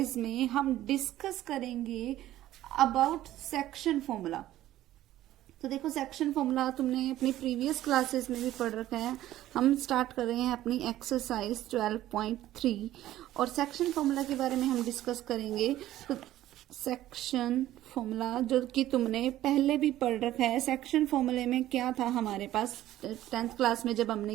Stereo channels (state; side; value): quieter; left; 14.0 dB